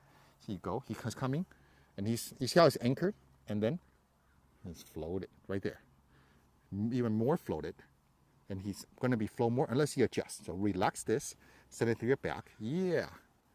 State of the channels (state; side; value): identical; both; correlation 1.00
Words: So you go. He's coming, and you see how it's anchored, and then he's floated right there. Even more floated, and he's going to be flow more unless you adjust. So relax this, send it through your back. Yeah.